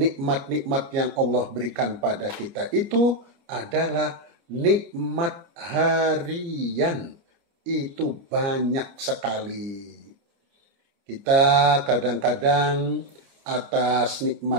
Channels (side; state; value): left; late; 29 ms